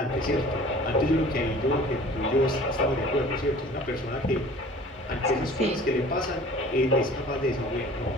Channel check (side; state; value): both; normal; correlation 0.46